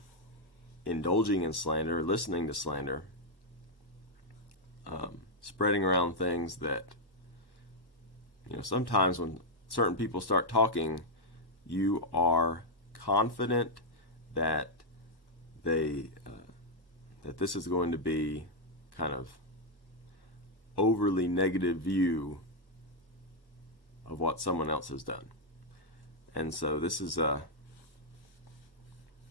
indulging in slander, listening to slander, spreading around things that, sometimes when certain people start talking, you are confident that that this is going to be kind of overly negative view of what someone else has done. And so this is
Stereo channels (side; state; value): right; late; 1.1 ms